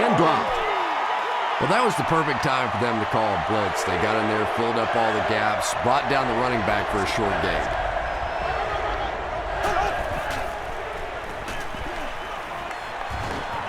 dropped. Well, that was the perfect time for them to call a blitz. They got in there, filled up all the gaps, brought down the running back for a short gain.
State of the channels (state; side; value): identical; both; correlation 1.00